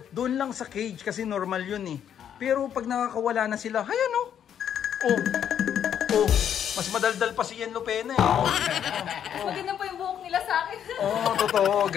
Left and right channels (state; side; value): quieter; right; 9.2 dB